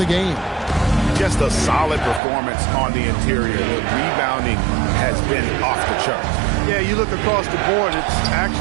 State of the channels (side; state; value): left; drops out; at 2.2 s